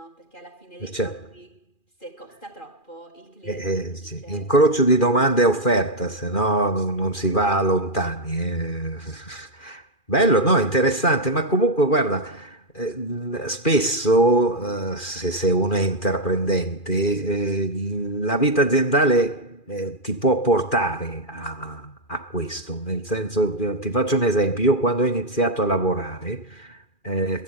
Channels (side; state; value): right; late; 2.4 ms